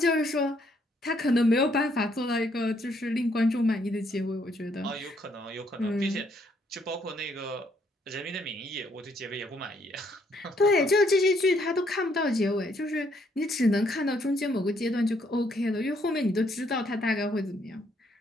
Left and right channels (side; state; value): both; normal; correlation 0.70